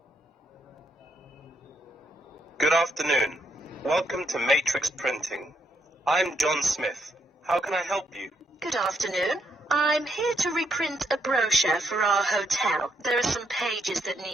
Good afternoon. Welcome to Matrix Printing. I'm John Smith. How can I help you? Good afternoon. I'm here to reprint a brochure for our hotel. There are some pages that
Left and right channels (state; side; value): normal; both; correlation 0.76